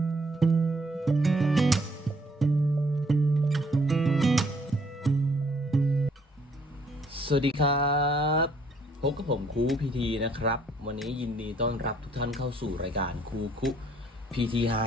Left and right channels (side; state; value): both; normal; correlation 0.65